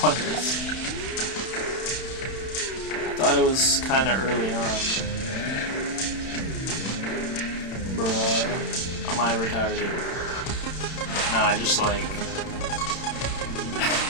one it is. Thought it was kind of early on. Bruh. Am I retarded? No, I just like...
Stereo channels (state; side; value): late; right; 31 ms